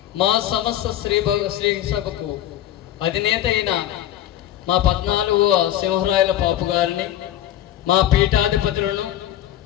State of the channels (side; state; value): right; quieter; 12.4 dB